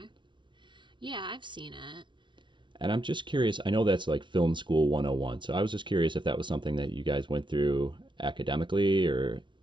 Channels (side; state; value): left; late; 0.24 ms